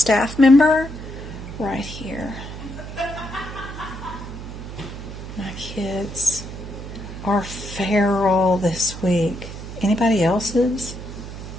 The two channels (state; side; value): noise; right; hum, 10 dB below the sound